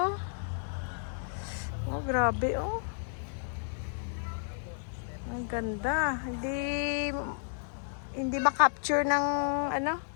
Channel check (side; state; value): right; silent; digital silence